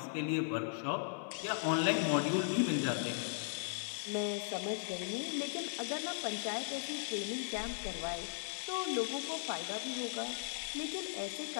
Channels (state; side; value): silent; right; digital silence